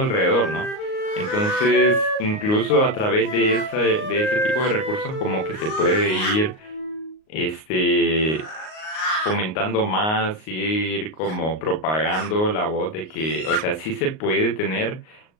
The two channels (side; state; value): right; late; 38 ms